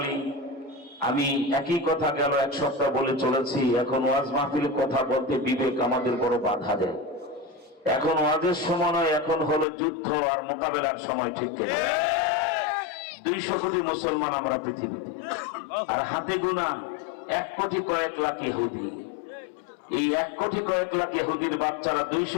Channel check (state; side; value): drops out; right; at 9.7 s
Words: আমি একই কথা গেল এক সপ্তাহ বলে চলেছি। এখন ওয়াজ মাহফিলের কথা বলতে বিবেক আমাদের বড় বাধা দেয়। এখন ওয়াজের সময় নয়, এখন হলো যুদ্ধ আর মোকাবেলার সময়, ঠিক কিনা? 200 কোটি মুসলমান আমরা পৃথিবীতে, আর হাতে গোনা 1 কোটি কয়েক লাখ ইহুদি। এই 1 কোটি কয়েক লাখ ইহুদির বাচ্চারা